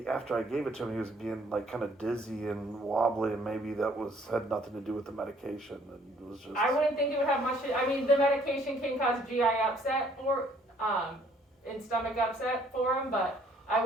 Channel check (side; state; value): both; normal; correlation 0.62